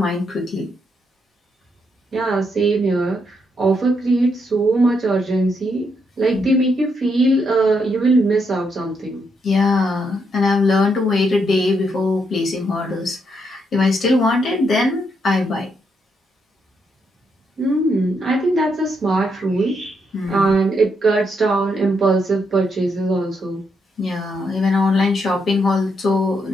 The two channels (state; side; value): normal; both; correlation 0.78